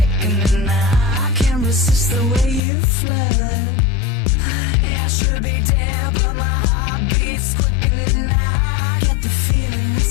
I can't resist the way you flirt. I should be dead, but my heart beats quickening. I get the feeling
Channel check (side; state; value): right; drops out; at 2.6 s